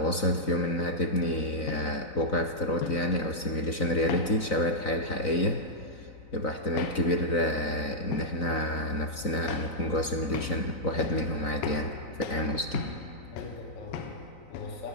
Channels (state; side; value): late; right; 3.9 ms